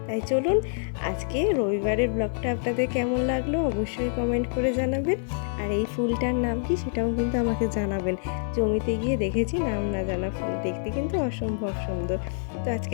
তাই চলুন, আজকে রবিবারের ব্লগটা আপনাদের কেমন লাগলো অবশ্যই কমেন্ট করে জানাবেন। আর এই ফুলটার নাম কি সেটাও কিন্তু আমাকে জানাবেন। জমিতে গিয়ে দেখেছি নাম না জানা ফুল, দেখতে কিন্তু অসম্ভব সুন্দর। তো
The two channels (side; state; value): right; silent; 61 dB below the other